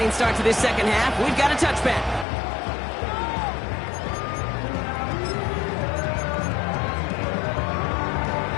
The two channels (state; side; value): drops out; right; at 2.2 s